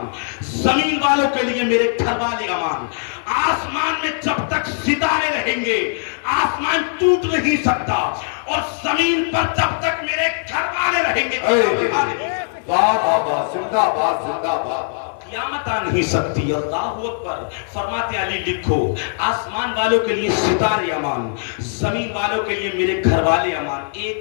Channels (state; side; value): silent; right; 66 dB below the other